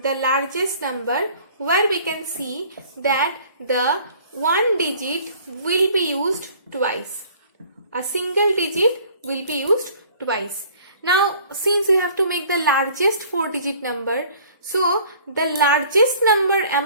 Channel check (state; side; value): inverted; both; correlation -0.52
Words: largest number where we can see that the one digit will be used twice. A single digit will be used twice. Now, since we have to make the largest 4-digit number, so the largest number